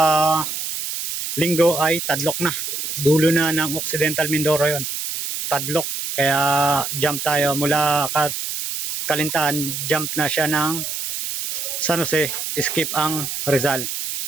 linggo ay Tadlok na. Dulo na ng Occidental Mindoro yon. Tadlok. Kaya jump tayo mula Kalintahan, jump na siya ng San Jose, skip ang Rizal.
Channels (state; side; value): noise; right; hiss, 4 dB below the sound